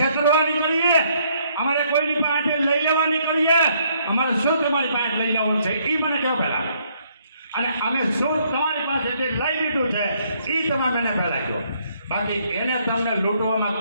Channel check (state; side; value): inverted; both; correlation -0.68